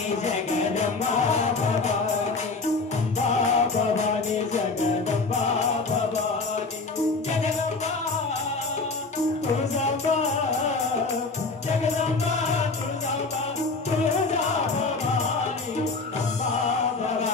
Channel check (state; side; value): quieter; right; 3.8 dB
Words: जगदम्बा भवानी अम्बा भवानी जगदम्बा भवानी जगदम्बा तुळजांबा जगदम्बा तुळजांबा तुळजा भवानी अम्बा